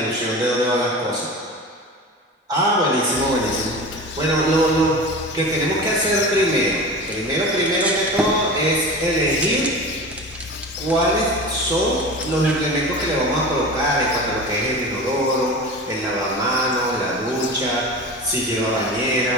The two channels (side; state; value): both; normal; correlation 0.32